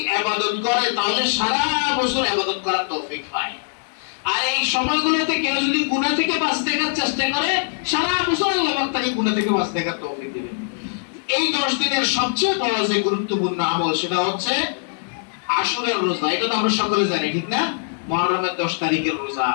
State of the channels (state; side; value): silent; right; digital silence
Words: ইবাদত করে তাহলে সারা বছর ইবাদত করার তৌফিক পায়। আর এই সময়গুলোতে কেউ যদি গুনাহ থেকে বাঁচতে চেষ্টা করে, সারা বছর আল্লাহ পাক তাকে গুনাহ থেকে বাঁচতে তৌফিক দিবেন। এই 10 দিনের সবচেয়ে বড় যে গুরুত্বপূর্ণ আমল সেটা হচ্ছে আশুরার রোজা। এটা তো আমরা সকলে জানি, ঠিক না? মুহররমের 10 তারিখের রোজা।